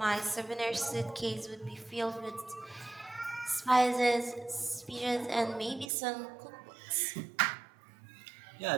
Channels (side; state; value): left; drops out; at 5.9 s